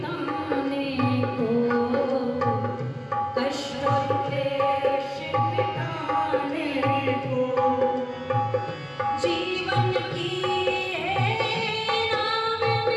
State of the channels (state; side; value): identical; both; correlation 1.00